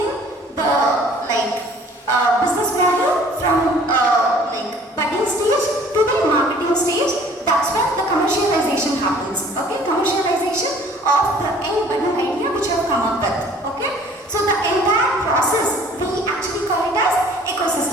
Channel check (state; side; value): normal; both; correlation 0.53